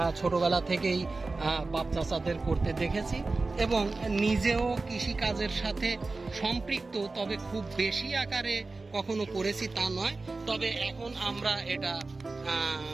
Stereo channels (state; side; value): quieter; left; 3.6 dB